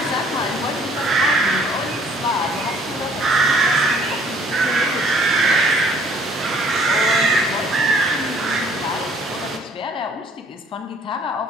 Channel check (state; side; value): normal; both; correlation 0.59